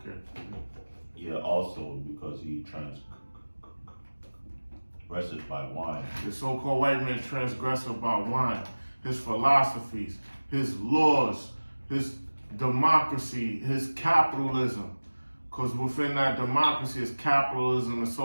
Yeah, also because he transgresses by wine. The so-called white man transgressive by wine. His philosophies, his laws, his democracy, his capitalism. Because within that democracy is capitalism and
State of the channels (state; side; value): inverted; both; correlation -1.00